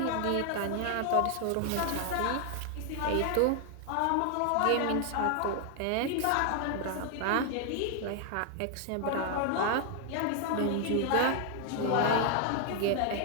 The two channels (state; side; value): different; both; correlation 0.00